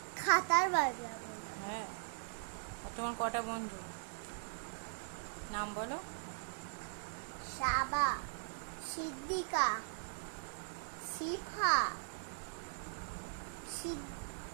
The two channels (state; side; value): silent; left; digital silence